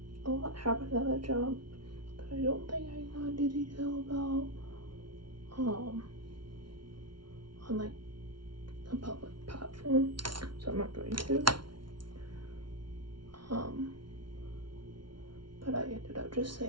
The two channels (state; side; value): late; left; 0.73 ms